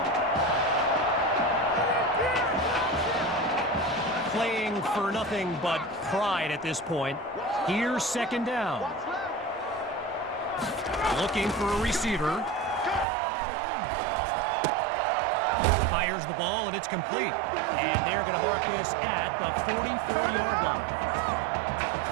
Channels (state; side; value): drops out; left; at 13.1 s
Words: Playing for nothing but pride at this point. Here's 2nd down. Looking for a receiver. Fires the ball, and it's complete. And they're going to mark this at the 44-yard line.